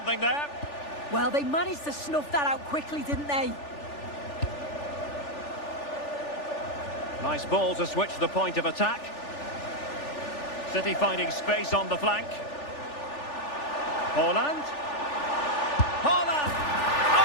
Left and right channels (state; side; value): late; right; 3.4 ms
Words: there. Well, they managed to snuff that out quickly, didn't they? Nice ball to switch the point of attack. City finding space on the flank. Haaland. Haaland!